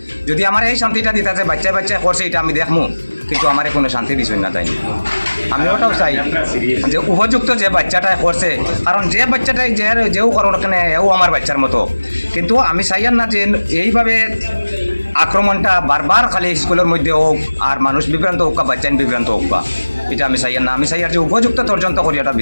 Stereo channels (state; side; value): inverted; both; correlation -1.00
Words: যদি আমার এই শান্তিটা দিতে আছে বাচ্চায় বাচ্চায় করছে এটা আমি দেখমু, কিন্তু আমার কোনো শান্তি দিছই না তাই। আমি ওটাও চাই যে উপযুক্ত যে বাচ্চাটাই করছে, কারণ যে বাচ্চাটাই যেও করো কেন এও আমার বাচ্চার মতো। কিন্তু আমি চাইয়ার না যে এইভাবে আক্রমণটা বারবার খালি স্কুলের মধ্যে হোক আর মানুষ বিভ্রান্ত হোক বা বাচ্চা বিভ্রান্ত হোক, বা এটা আমি চাইয়ার না। আমি চাইয়ার যে উপযুক্ত তদন্ত করি এটা